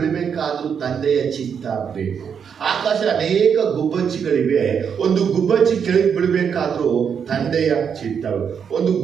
ತಂದೆಯ ಚಿತ್ತ ಬೇಕು. ಆಕಾಶ ಅನೇಕ ಗುಬ್ಬಚ್ಚಿಗಳಿವೆ. ಒಂದು ಗುಬ್ಬಚ್ಚಿ ಕೆಳಗೆ ಬೀಳಬೇಕಾದ್ರೂ ತಂದೆಯ ಚಿತ್ತ. ಒಂದು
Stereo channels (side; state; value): left; quieter; 7.2 dB